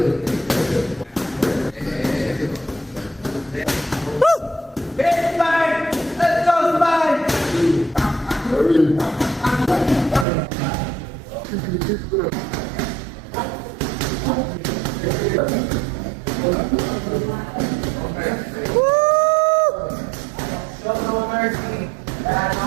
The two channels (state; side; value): drops out; left; at 10.2 s